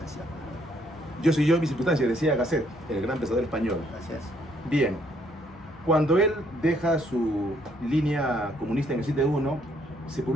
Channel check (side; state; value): both; normal; correlation 0.68